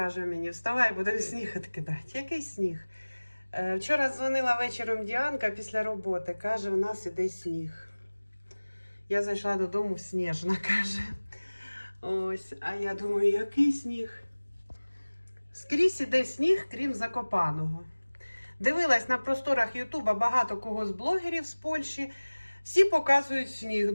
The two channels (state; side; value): inverted; both; correlation -1.00